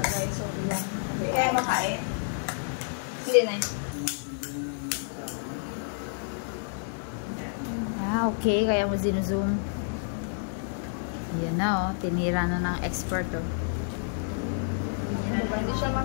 guys. So, piga. Hindi kaya makain. Hindi na Okay. Kaya mo zoom. Yan na tinira na ng expert Hindi siya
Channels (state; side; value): silent; right; digital silence